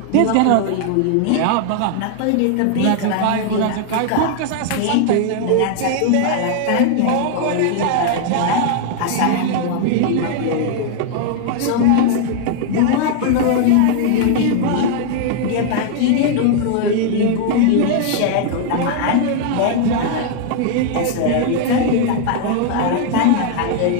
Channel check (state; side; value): different; both; correlation 0.00